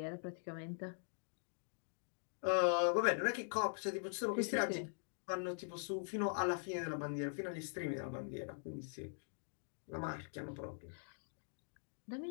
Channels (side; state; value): right; silent; digital silence